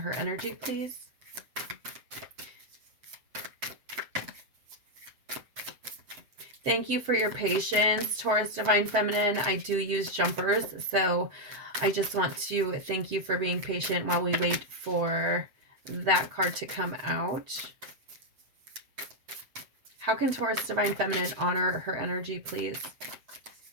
energy, please? Thank you for your patience, Taurus Divine Feminine. I do use jumpers, so I just want to thank you for being patient while we wait for that card to come out. How can Taurus Divine Feminine honor her energy, please?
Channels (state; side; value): late; left; 7.6 ms